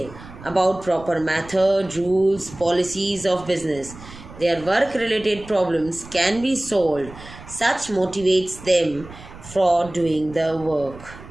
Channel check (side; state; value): right; noise; rumble, 17 dB below the sound